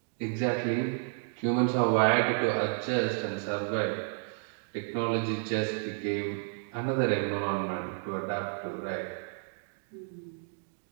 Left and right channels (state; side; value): silent; left; 57 dB below the other